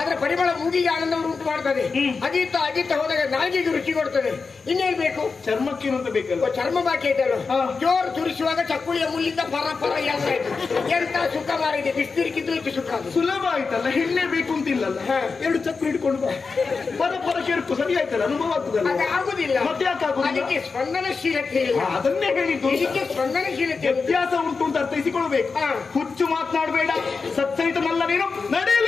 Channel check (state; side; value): quieter; right; 4.7 dB